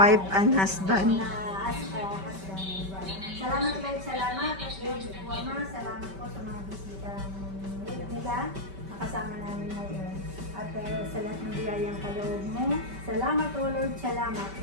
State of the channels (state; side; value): late; left; 5.2 ms